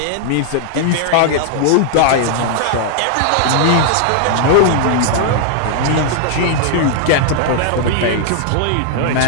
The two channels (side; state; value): both; different; correlation 0.00